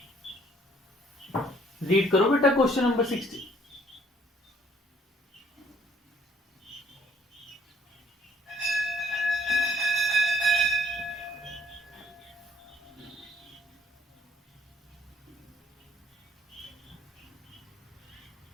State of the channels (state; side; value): normal; both; correlation 0.62